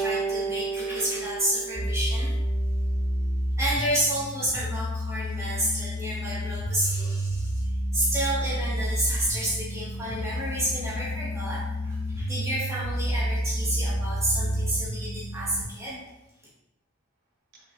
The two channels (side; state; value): both; normal; correlation 0.49